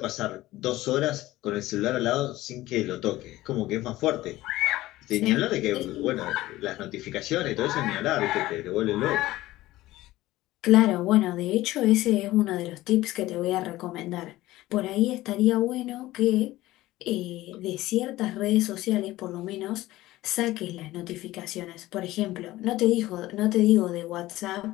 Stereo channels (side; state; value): right; quieter; 16.9 dB